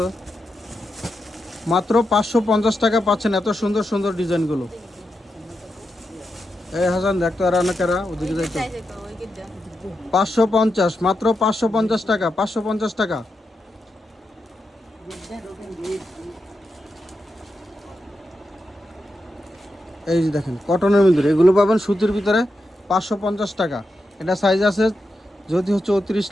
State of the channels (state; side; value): normal; both; correlation 0.87